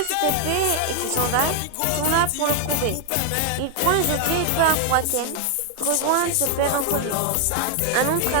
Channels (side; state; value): both; different; correlation 0.00